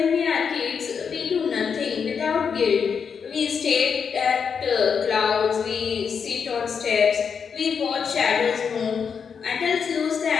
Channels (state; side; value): quieter; right; 6.5 dB